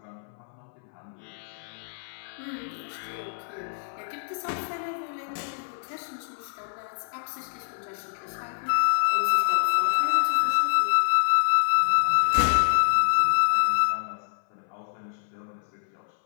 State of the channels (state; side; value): silent; right; 60 dB below the other